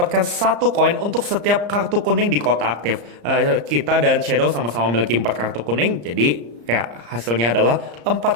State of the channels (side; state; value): left; late; 34 ms